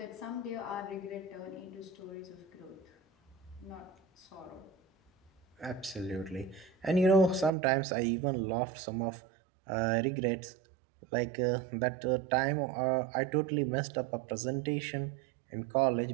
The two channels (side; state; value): left; drops out; at 7.5 s